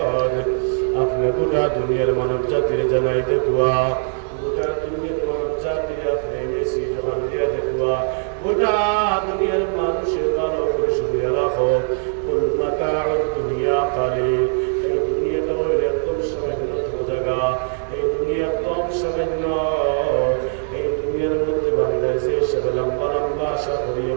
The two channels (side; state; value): left; silent; digital silence